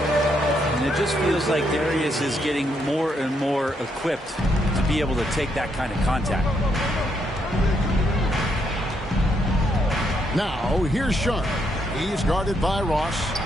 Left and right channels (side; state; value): both; normal; correlation 0.76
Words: it just feels like Darius is getting more and more equipped to be able to take that kind of contact. Now, here's Sharp. He's guarded by Ross.